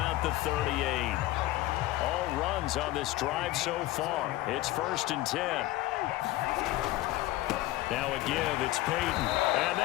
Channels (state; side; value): quieter; right; 16.6 dB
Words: the 38. All runs on this drive so far. It's 1st and 10. Now a give, it's Peyton. And